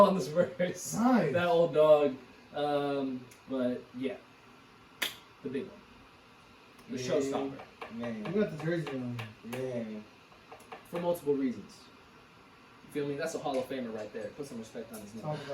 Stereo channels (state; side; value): identical; both; correlation 1.00